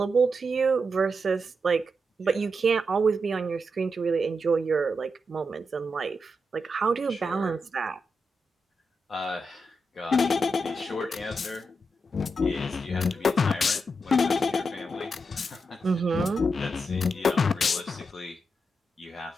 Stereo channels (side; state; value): both; normal; correlation 0.85